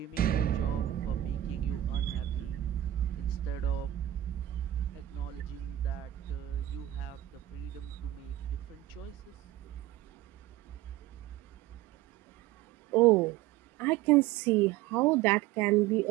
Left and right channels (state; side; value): quieter; left; 13.8 dB